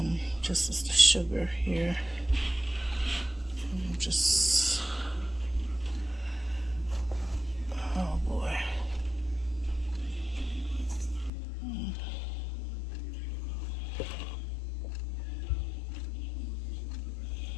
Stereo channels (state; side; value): drops out; right; at 11.3 s